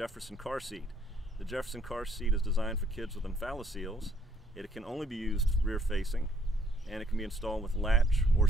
car seat. The Jefferson car seat is designed for kids with umbilical. It can only be used rear facing, and it can be installed with latch or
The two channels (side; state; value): both; normal; correlation 0.67